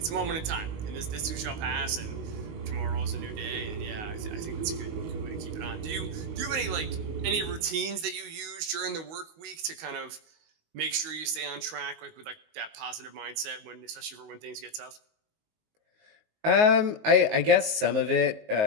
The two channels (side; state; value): left; late; 19 ms